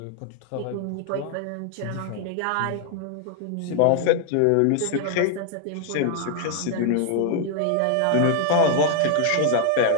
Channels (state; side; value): different; both; correlation 0.00